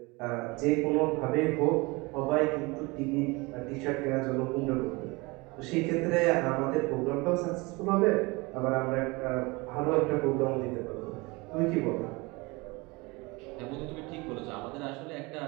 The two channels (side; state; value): left; quieter; 25.2 dB